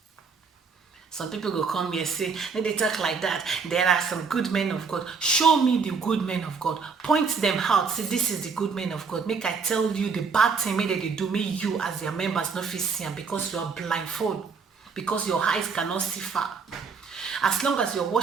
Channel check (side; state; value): left; quieter; 5.3 dB